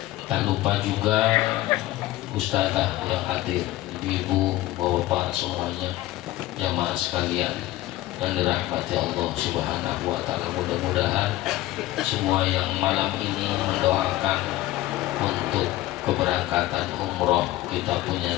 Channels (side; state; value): right; quieter; 16.3 dB